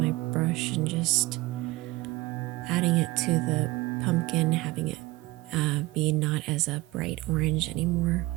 brush and just adding it to the pumpkin, having it be not as a bright orange anymore.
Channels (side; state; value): left; quieter; 20.1 dB